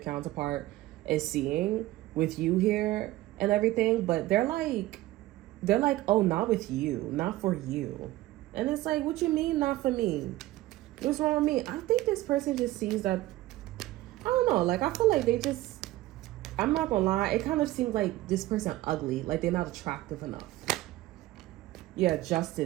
is seeing with you here and everything. But they're like, oh, not with you, not for you. And it's like, what you mean not for me? What's wrong with me? I think this person just sees that, I don't know, like, I feel like they just, I'm not gonna lie, it kind of seems like this person ugly, like they're not attractive enough. Yeah,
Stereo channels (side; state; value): left; quieter; 16.8 dB